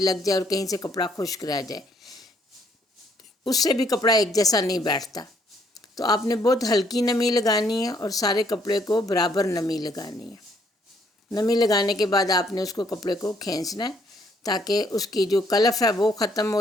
لگ جائے اور کہیں سے کپڑا خشک رہ جائے، اس سے بھی کپڑا ایک جیسا نہیں بیٹھتا۔ تو آپ نے بہت ہلکی نمی لگانی ہے اور سارے کپڑے کو برابر نمی لگانی ہے۔ نمی لگانے کے بعد آپ نے اس کو کپڑے کو کھینچنا ہے تاکہ اس کی جو کلف ہے وہ ختم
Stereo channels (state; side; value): normal; both; correlation 0.68